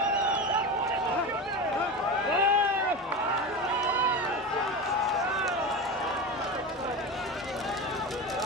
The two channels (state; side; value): normal; both; correlation 0.24